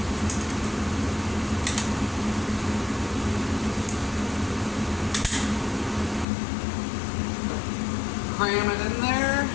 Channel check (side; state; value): right; drops out; at 6.2 s